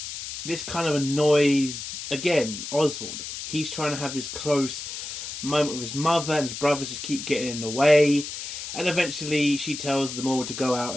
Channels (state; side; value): noise; left; hiss, 8 dB below the sound